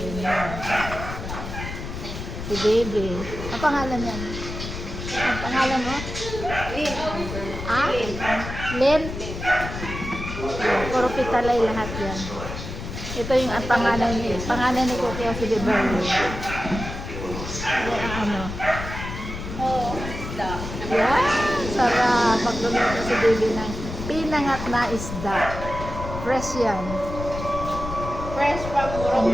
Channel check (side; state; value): left; noise; rumble, 7 dB below the sound